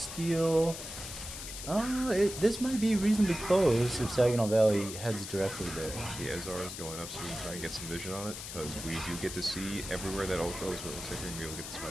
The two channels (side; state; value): left; noise; hiss, 9 dB below the sound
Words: This might be reasonably close if Saginaw Valley heads directly there. The Ezar is going up, so we can try and get some vision on it, because we do get to see everywhere that ult goes, but it looks like we're going to be able to get this